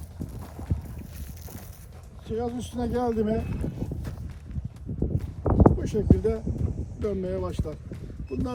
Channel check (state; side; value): identical; both; correlation 1.00